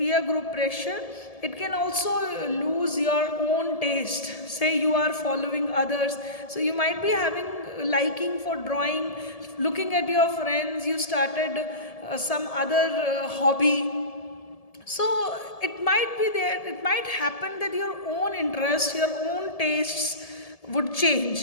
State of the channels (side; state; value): right; late; 1.7 ms